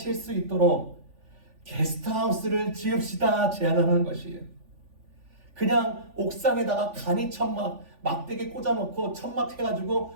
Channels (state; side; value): late; left; 3.4 ms